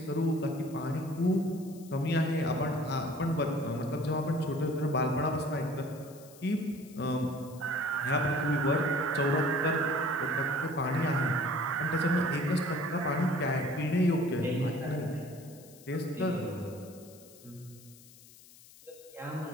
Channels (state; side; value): noise; left; hiss, 22 dB below the sound